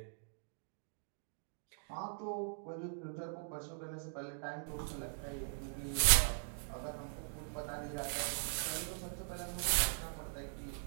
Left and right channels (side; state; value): left; silent; digital silence